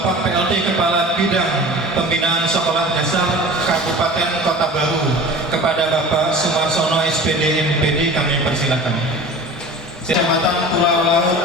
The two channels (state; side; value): normal; both; correlation 0.39